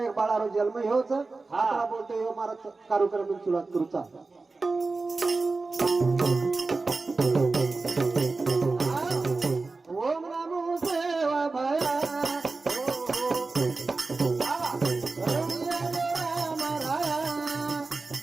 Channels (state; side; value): quieter; left; 3.8 dB